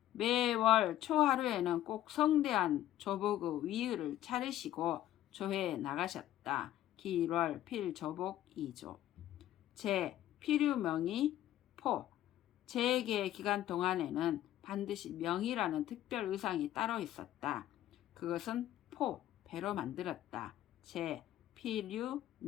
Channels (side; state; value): right; quieter; 13.2 dB